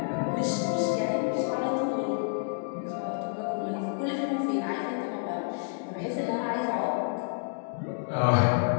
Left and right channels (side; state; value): right; silent; digital silence